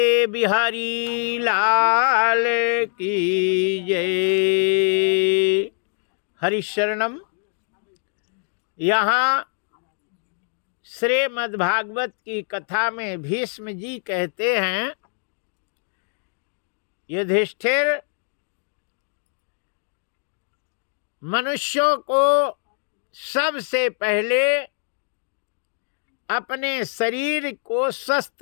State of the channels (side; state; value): right; silent; digital silence